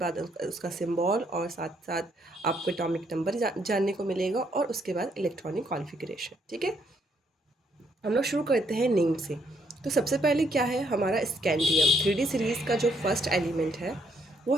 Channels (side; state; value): both; normal; correlation 0.71